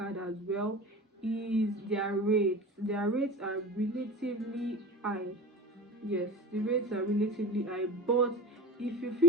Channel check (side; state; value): both; normal; correlation 0.34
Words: as well is their rates. Their rates are relatively high. Yes, the rates are relatively high, but if you